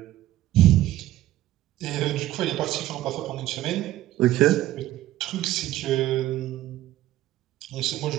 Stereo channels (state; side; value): quieter; left; 14.7 dB